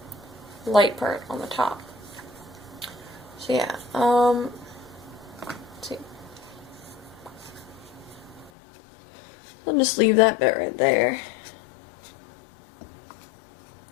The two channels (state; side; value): drops out; right; at 8.5 s